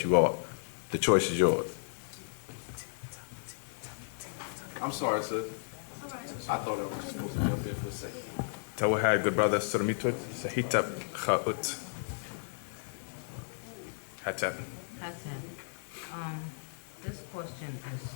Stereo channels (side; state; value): right; silent; 55 dB below the other